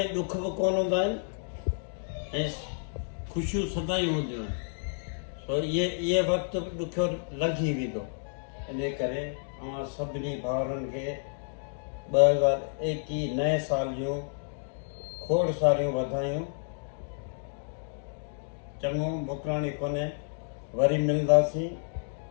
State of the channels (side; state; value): right; silent; digital silence